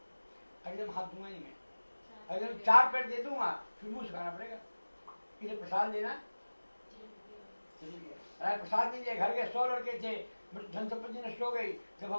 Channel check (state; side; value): inverted; both; correlation -1.00